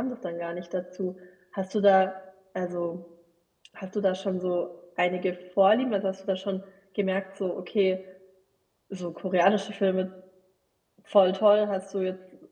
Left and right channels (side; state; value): both; identical; correlation 1.00